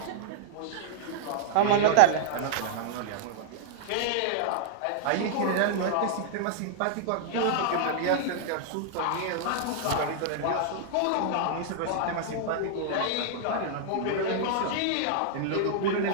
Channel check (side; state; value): both; different; correlation -0.01